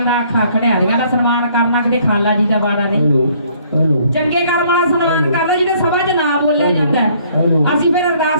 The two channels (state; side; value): inverted; both; correlation -0.62